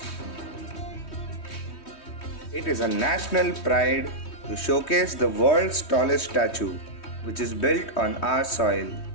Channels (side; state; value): right; late; 3.2 ms